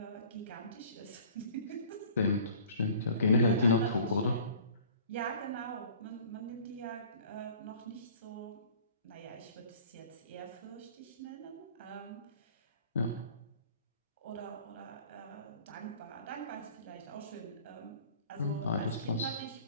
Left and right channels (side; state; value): both; inverted; correlation -0.48